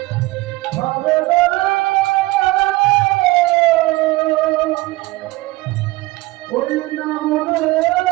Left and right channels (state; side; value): quieter; left; 20.3 dB